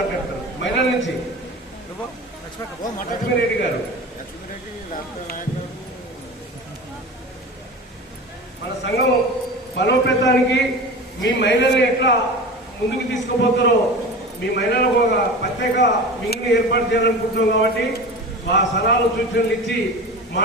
మహిళల నుంచి లక్ష్మీరెడ్డి గారు. మన సంఘం బలోపేతానికి మీ మహిళల్ని ఎట్లా ముందుకు తీసుకుపోతారో, మీ మహిళలకు ఒక ప్రత్యేక వింగ్ని ఏర్పాటు చేయాలనుకుంటున్నాం కాబట్టి ఆ సలహాలు సూచనలు ఇచ్చి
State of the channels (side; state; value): both; normal; correlation 0.32